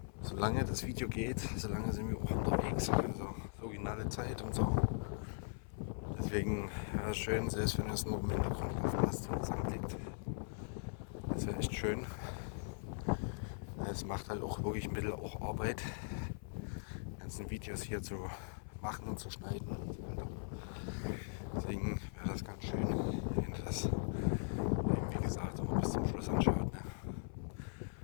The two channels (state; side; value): silent; right; 51 dB below the other